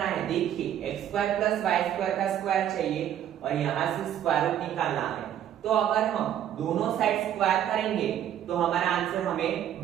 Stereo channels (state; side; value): quieter; left; 10.6 dB